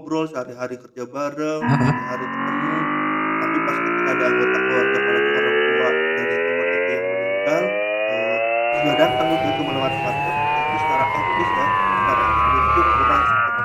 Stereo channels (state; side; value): identical; both; correlation 1.00